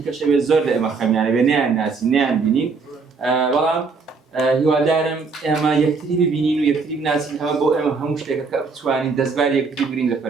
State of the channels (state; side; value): quieter; left; 4.7 dB